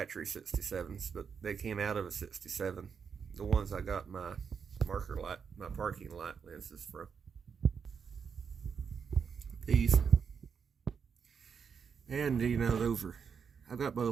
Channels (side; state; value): left; quieter; 6.5 dB